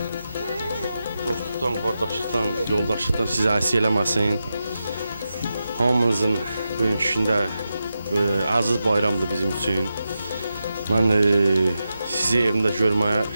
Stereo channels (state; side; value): inverted; both; correlation -0.90